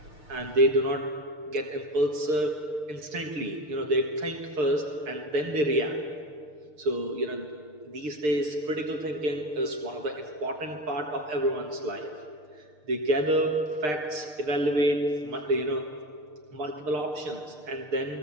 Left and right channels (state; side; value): late; left; 6.7 ms